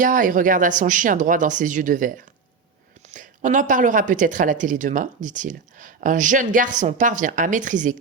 et regarda son chien droit dans ses yeux de verre. « On en parlera peut-être à la télé demain, dit-il. Un jeune garçon parvient à maîtriser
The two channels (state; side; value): quieter; left; 5.0 dB